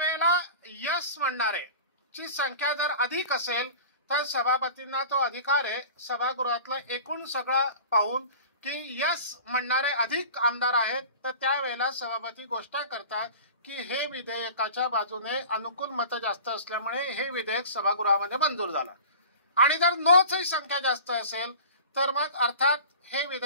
यस म्हणणारे ची संख्या जर अधिक असेल तर सभापतींना तो अधिकार आहे सभागृहातलं एकूण सगळं पाहून की यस म्हणणारे अधिक आमदार आहेत तर त्यावेळेला सभापती घोषणा करतात की हे विधेयकाच्या बाजूने अनुकूल मतं जास्त असल्यामुळे हे विधेयक सभागृहामध्ये मंजूर झालं. आणि जर नोची संख्या जास्त असेल तर मग अर्थात हे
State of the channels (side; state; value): both; inverted; correlation -0.39